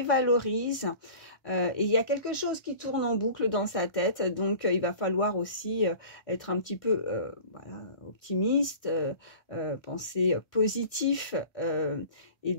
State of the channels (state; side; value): late; right; 1.6 ms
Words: Et il y a quelque chose qui tourne en boucle dans sa tête. Donc, il va falloir aussi être un petit peu voilà, optimiste, penser positif et